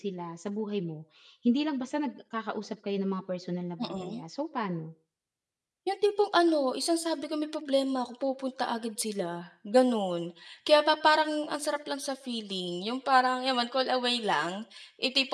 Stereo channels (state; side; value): identical; both; correlation 1.00